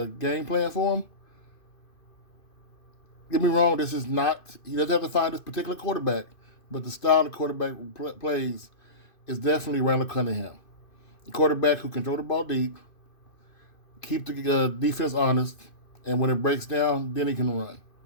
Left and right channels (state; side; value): late; right; 2.5 ms